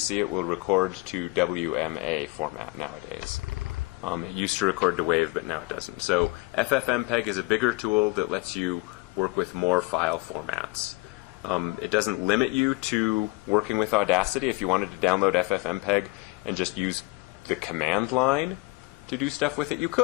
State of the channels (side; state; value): right; quieter; 24.1 dB